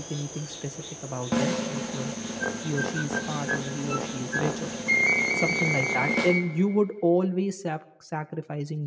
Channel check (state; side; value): identical; both; correlation 1.00